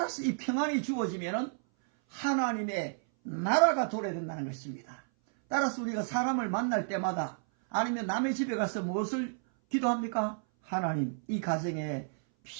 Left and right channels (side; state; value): left; silent; 57 dB below the other